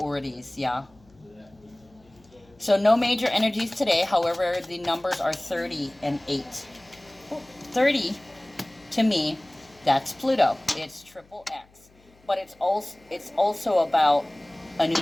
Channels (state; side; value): noise; left; hum, 30 dB below the sound